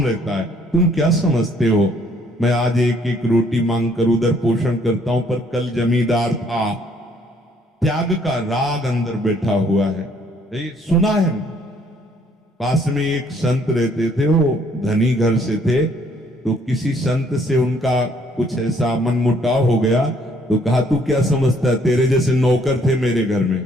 रहता है। तुम क्या समझते हो, मैं आज एक एक रोटी मांग कर उधर पोषण करता हूं, पर कल जमींदार था। त्याग का राग अंदर बैठा हुआ है। ये सुना है। पास में एक संत रहते थे, वो धनी घर से थे, तो किसी संत से उनका कुछ ऐसा मनमुटाव हो गया, तो कहा तू क्या समझता है, तेरे जैसे नौकर थे मेरे घर में,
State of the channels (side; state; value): both; normal; correlation 0.64